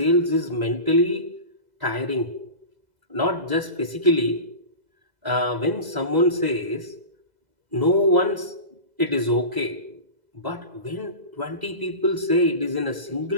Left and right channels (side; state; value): left; late; 2.0 ms